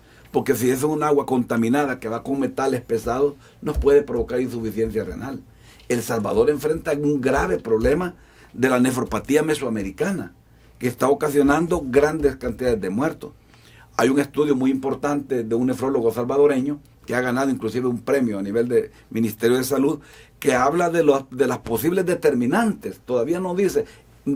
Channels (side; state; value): both; identical; correlation 1.00